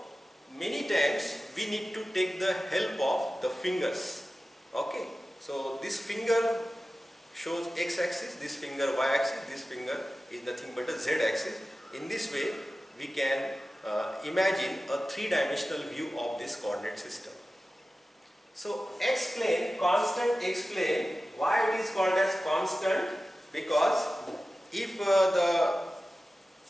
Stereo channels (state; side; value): normal; both; correlation 0.95